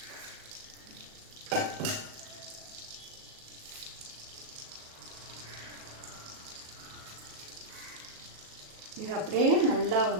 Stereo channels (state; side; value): late; left; 37 ms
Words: இது அப்படியே நல்லா